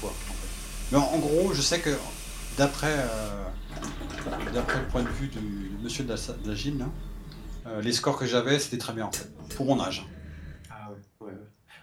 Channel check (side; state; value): both; identical; correlation 1.00